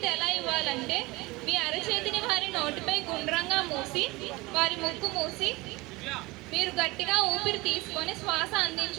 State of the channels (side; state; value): left; quieter; 22.3 dB